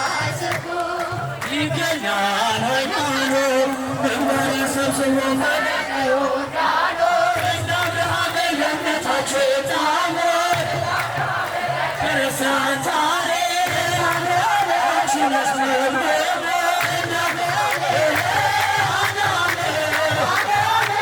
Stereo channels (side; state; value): both; identical; correlation 1.00